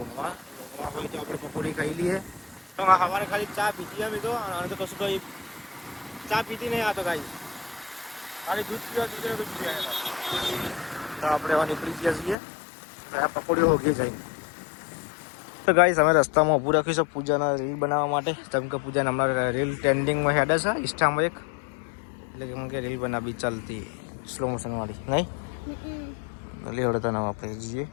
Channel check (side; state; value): right; drops out; at 12.4 s